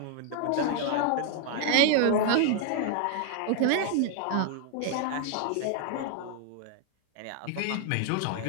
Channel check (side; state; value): both; different; correlation 0.00